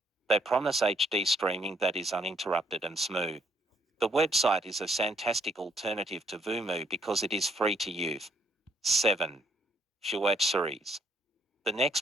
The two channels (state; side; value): normal; both; correlation 0.69